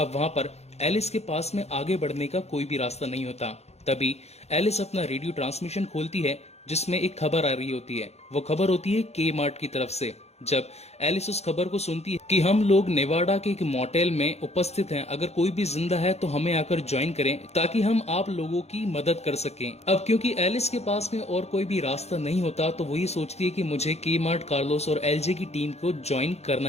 वहां पर एलिस के पास में आगे बढ़ने का कोई भी रास्ता नहीं होता। तभी एलिस अपना रेडियो ट्रांसमिशन खोलती है, जिसमें एक खबर आ रही होती है। वो खबर होती है के मार्ट की तरफ से। जब एलिस उस खबर को सुनती है कि हम लोग नेवाडा के एक मोटेल में उपस्थित हैं, अगर कोई भी जिंदा है तो हमें आकर ज्वाइन करें ताकि हम आप लोगों की मदद कर सकें। अब क्योंकि एलिस के पास में और कोई भी रास्ता नहीं होता तो वो ये सोचती है कि मुझे के मार्ट, कार्लोस और एलजे की टीम को ज्वाइन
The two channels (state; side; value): late; right; 0.31 ms